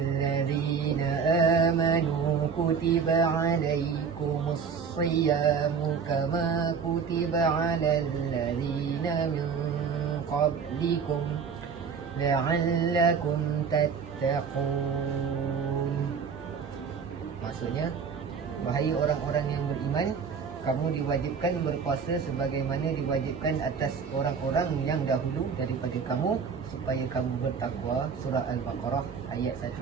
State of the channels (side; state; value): left; quieter; 6.1 dB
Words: amanu kutiba 'alaikumus siyamu kama kutiba 'alal ladzina min qablikum la'allakum tattaqun. Maksudnya, wahai orang-orang yang beriman, kamu diwajibkan berpuasa sebagaimana diwajibkan atas orang-orang yang dahulu daripada kamu supaya kamu bertakwa. Surah Al-Baqarah ayat 1.